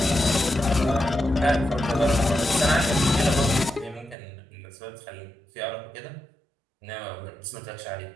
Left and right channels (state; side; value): drops out; left; at 4.2 s